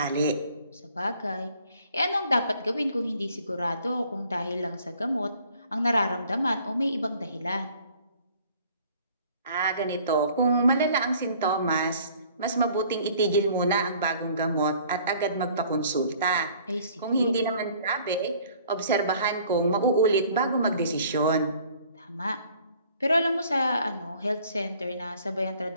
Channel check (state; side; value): inverted; both; correlation -0.55